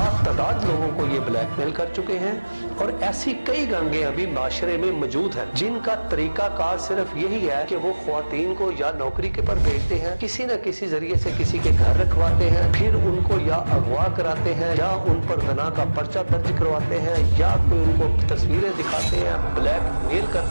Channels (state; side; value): inverted; both; correlation -1.00